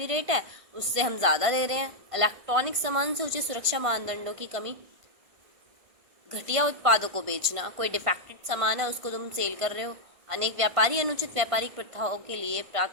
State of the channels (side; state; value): left; late; 1.5 ms